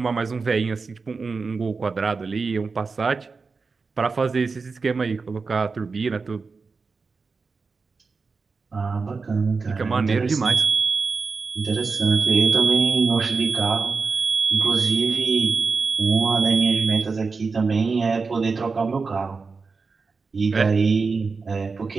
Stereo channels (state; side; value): quieter; left; 4.5 dB